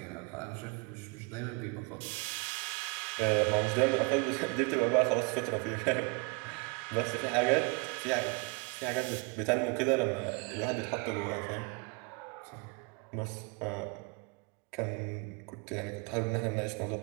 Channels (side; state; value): left; quieter; 31.0 dB